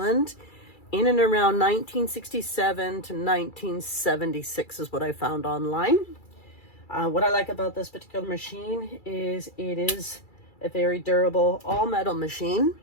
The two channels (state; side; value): late; right; 2.3 ms